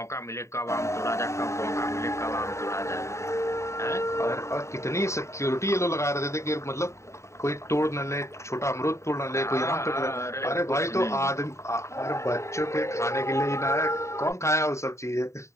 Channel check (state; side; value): late; right; 0.14 ms